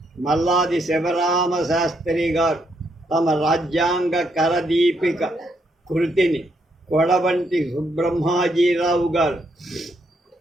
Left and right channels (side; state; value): both; normal; correlation 0.76